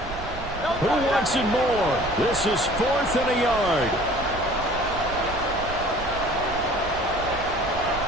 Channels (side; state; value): right; noise; rumble, 12 dB below the sound